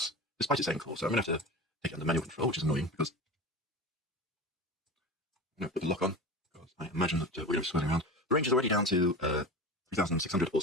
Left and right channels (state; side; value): normal; both; correlation 0.30